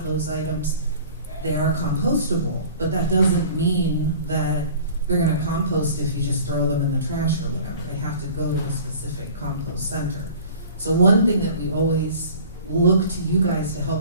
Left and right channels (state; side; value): inverted; both; correlation -0.45